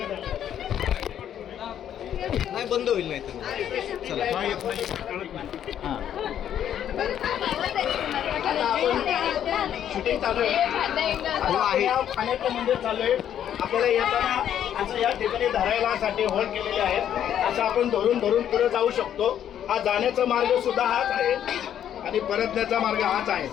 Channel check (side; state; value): right; quieter; 10.0 dB